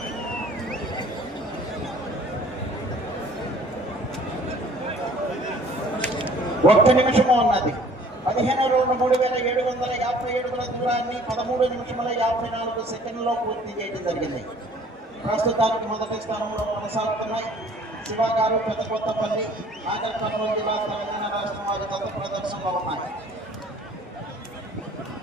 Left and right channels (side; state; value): both; normal; correlation 0.54